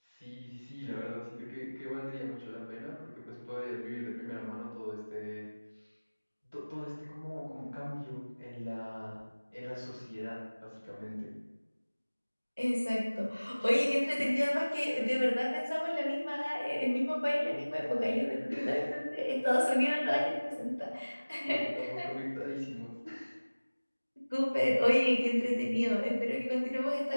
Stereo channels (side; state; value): both; inverted; correlation -1.00